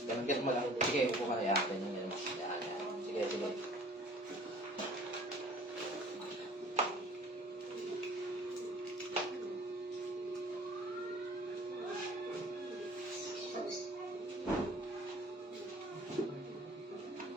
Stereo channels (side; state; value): both; normal; correlation 0.50